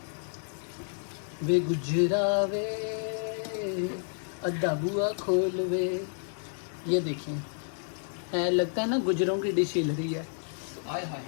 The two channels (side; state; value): right; silent; digital silence